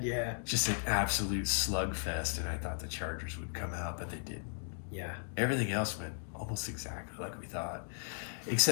Just an absolute slugfest, and I thought the Chargers would come out, but they didn't. Yeah. Everything else went almost exactly like we thought.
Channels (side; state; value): right; silent; digital silence